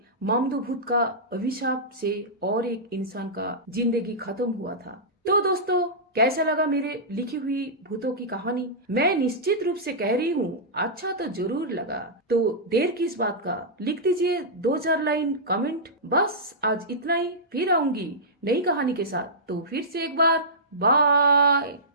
मामदो भूत का अभिशाप से और एक इंसान का जिंदगी खत्म हुआ था। तो दोस्तों, कैसा लगा मेरे लिखी हुई भूतों की कहानी? मैं निश्चित रूप से कह रही हूँ अच्छा तो जरूर लगा। तो देर किस बात का, लिख दीजिए 2-4 लाइन कमेंट। बस आज इतना ही, फिर आऊंगी नई कहानी के साथ। तो फिर से एक बार बाय।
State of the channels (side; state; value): both; normal; correlation -0.14